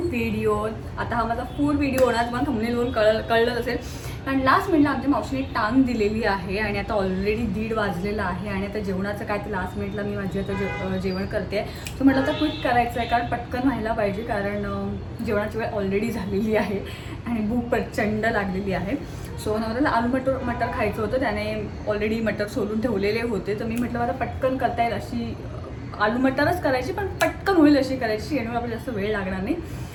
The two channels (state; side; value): identical; both; correlation 1.00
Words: video. आता हा माझा फूड व्हिडिओ होणार, तुम्हाला थंबनेलवरून कळलं असेल, कारण लास्ट मिनिटला आमच्या मावशीने टांग दिलेली आहे आणि आता ऑलरेडी 1:30 वाजलेला आहे आणि आता जेवणाचं काय ते लास्ट मिनिटला मी माझी आता जेवण करते. सो म्हटलं आता क्विक करायचं आहे, कारण पटकन व्हायला पाहिजे, कारण जेवणाची वेळ ऑलरेडी झालेली आहे आणि भूक प्रचंड लागलेली आहे. सो नवऱ्याला आलू मटर खायचं होतं, त्याने ऑलरेडी मटर सोलून ठेवलेले होते, तर मी म्हटलं मला पटकन करता येईल अशी आलू मटरच करायची, पण पटकन होईल अशी करायची, यामुळे आपल्याला जास्त वेळ लागणार नाही.